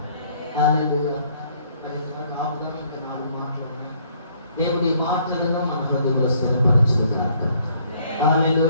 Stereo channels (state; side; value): inverted; both; correlation -0.64